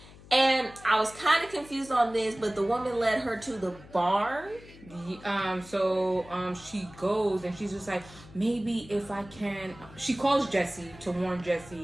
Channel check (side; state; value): left; noise; hum, 20 dB below the sound